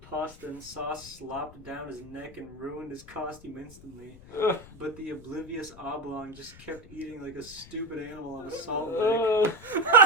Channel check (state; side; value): noise; left; rumble, 19 dB below the sound